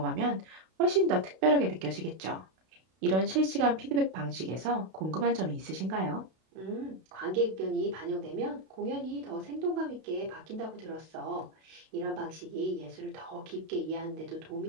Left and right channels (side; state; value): left; late; 32 ms